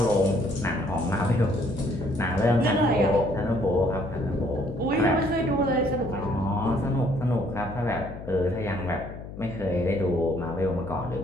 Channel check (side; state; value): left; noise; hum, 12 dB below the sound